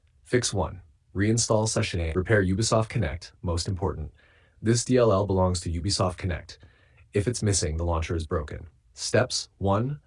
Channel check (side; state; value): both; identical; correlation 1.00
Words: Fix 1. Reinstall Session A. Repair Ubisoft Connect, most important. This DLL belongs to Ubisoft Connect. If it's missing, the launcher is broken. Steps 1.